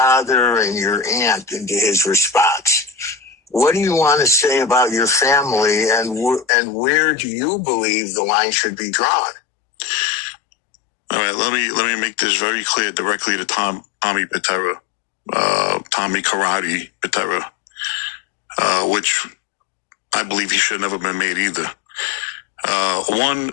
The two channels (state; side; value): drops out; right; at 6.5 s